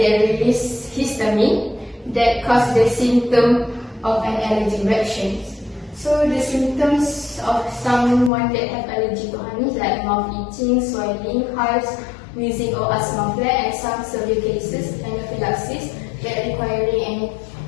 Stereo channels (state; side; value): drops out; right; at 8.3 s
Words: release histamine that cause the symptom of an allergic reaction. So the symptoms of someone that have allergy to honey is like mouth itching, swelling, hives, wheezing or asthma flare, and some severe cases anaphylaxis that requiring